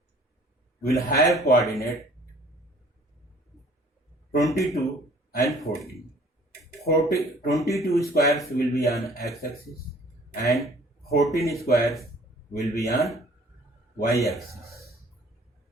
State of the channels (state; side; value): normal; both; correlation 0.54